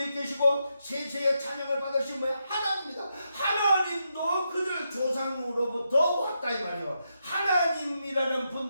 계시고 세세의 찬양을 받으신 뭐야? 하나님입니다. 하나님도 그들 조상으로부터 왔다 이 말이요. 하나님이라는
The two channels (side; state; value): both; inverted; correlation -0.84